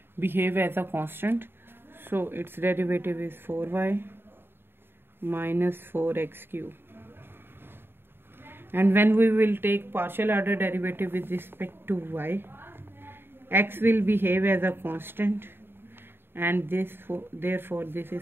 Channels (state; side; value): late; left; 0.11 ms